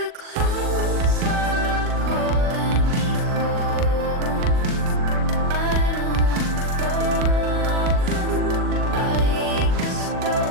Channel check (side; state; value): left; late; 40 ms